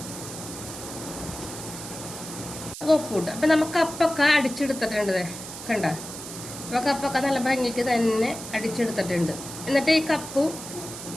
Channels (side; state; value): right; noise; hiss, 10 dB below the sound